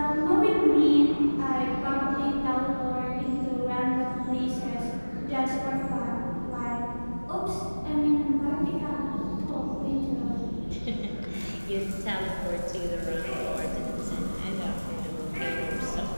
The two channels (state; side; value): inverted; both; correlation -1.00